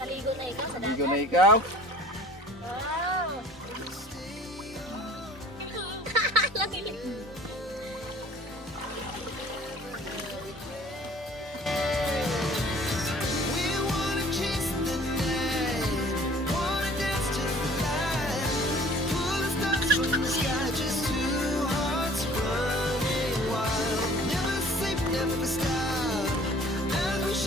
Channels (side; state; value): both; normal; correlation 0.51